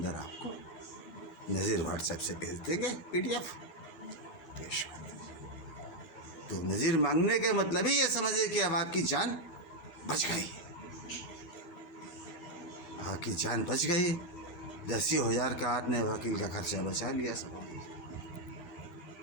आपको नज़ीर व्हाट्सएप से भेज देंगे, PDF पेश कर दीजिए। तो नज़ीर मांगने का मतलब ही ये समझिए कि अब आपकी जान बच गई, आपकी जान बच गई। 10,000 का आपने वकील का खर्चा बचा लिया सब।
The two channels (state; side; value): late; right; 11 ms